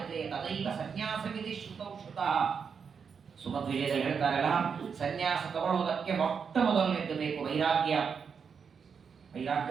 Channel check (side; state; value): left; quieter; 6.3 dB